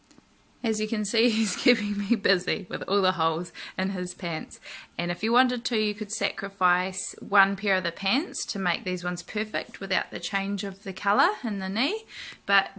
As you can see, he's keeping me busy with all the holes in his pants, and if you wanted to, you could sacrifice one pair of the pants to make these ones perfect without the change of the colour in the knee, but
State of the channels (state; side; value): identical; both; correlation 1.00